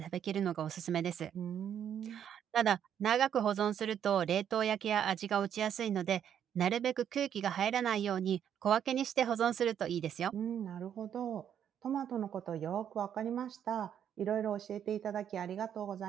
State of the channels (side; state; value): left; quieter; 9.2 dB